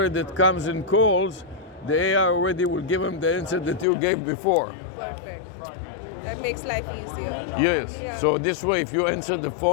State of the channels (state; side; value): drops out; right; at 3.9 s